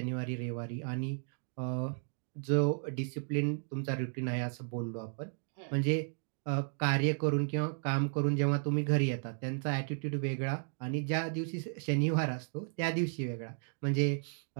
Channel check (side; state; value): left; silent; 55 dB below the other